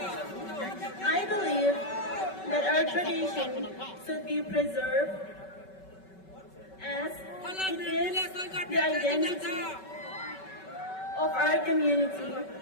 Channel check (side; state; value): right; late; 5.3 ms